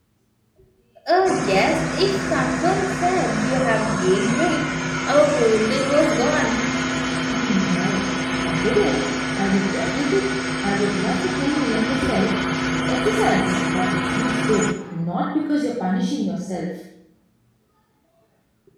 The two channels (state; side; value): identical; both; correlation 1.00